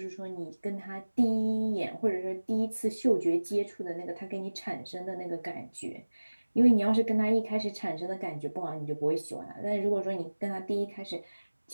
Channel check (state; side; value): inverted; both; correlation -1.00